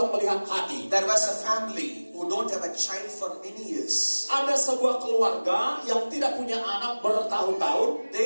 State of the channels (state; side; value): inverted; both; correlation -1.00